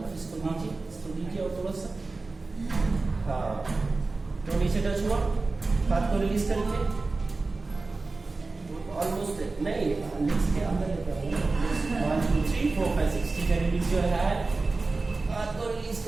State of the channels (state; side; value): quieter; left; 3.6 dB